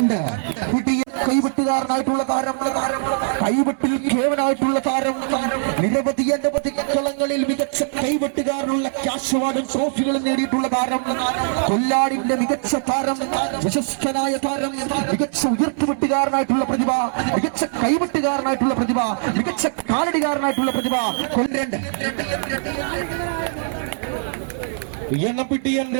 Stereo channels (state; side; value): silent; left; 64 dB below the other